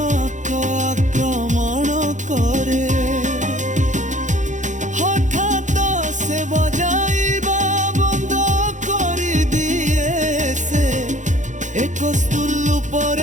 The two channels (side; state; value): left; late; 0.36 ms